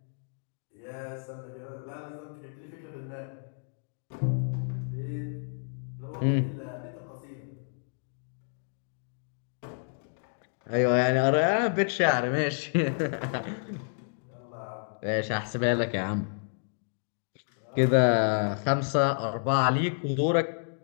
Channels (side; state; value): right; silent; digital silence